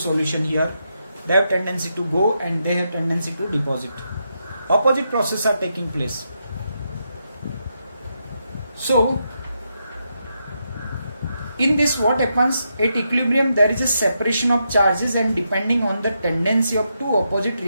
here. They have tendency to go and they have tendency to deposit. Opposite processes are taking place. So in this what happens, at equilibrium there is a separation of charges and depending on the tendency of two opposite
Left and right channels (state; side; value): inverted; both; correlation -0.83